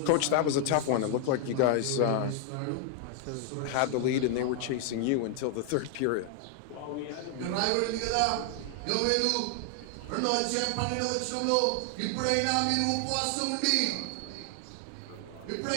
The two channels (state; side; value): different; both; correlation 0.00